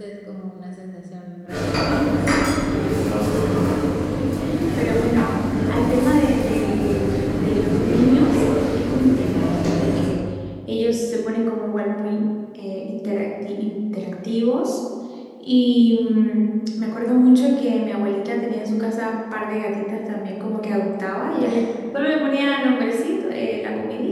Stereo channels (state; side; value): identical; both; correlation 1.00